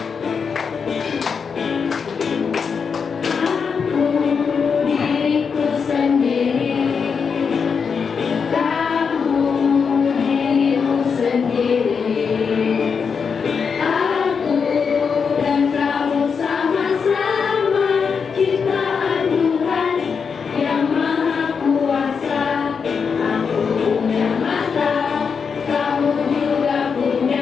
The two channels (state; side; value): quieter; right; 6.0 dB